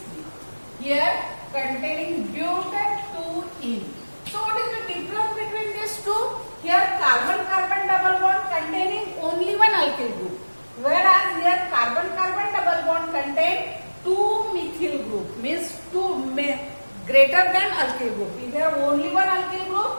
here containing buta-2-ene. So what is the difference between these two? Here carbon-carbon double bond containing only one alkyl group, whereas here carbon-carbon double bond contain two methyl group, means two greater than alkyl group. If there only one alkyl group,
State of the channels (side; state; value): both; inverted; correlation -1.00